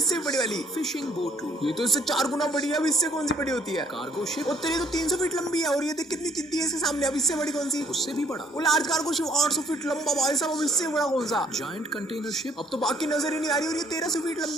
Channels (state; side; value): normal; both; correlation 0.62